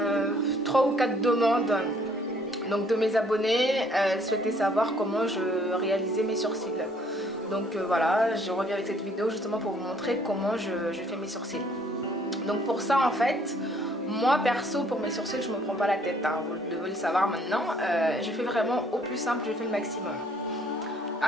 3 ou 4 demandes donc, de mes abonnés, souhaitaient savoir comment je réalisais mes sourcils. Donc voilà, je reviens avec cette vidéo justement pour vous montrer comment je fais mes sourcils. Donc pour ça en fait, moi perso pour mes sourcils je me prends pas la tête, hein, vous devez le savoir maintenant. Je fais vraiment au plus simple, je fais le maximum.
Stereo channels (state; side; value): normal; both; correlation 0.62